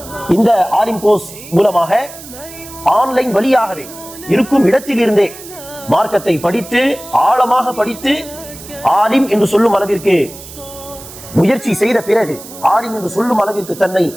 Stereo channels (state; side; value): noise; right; hiss, 16 dB below the sound